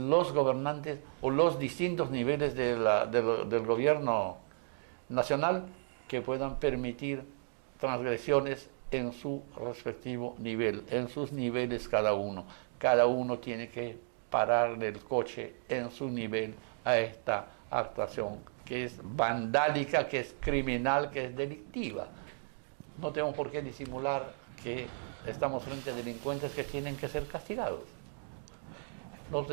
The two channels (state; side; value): silent; left; digital silence